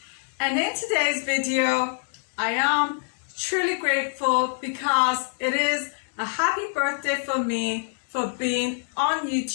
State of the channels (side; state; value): right; silent; 62 dB below the other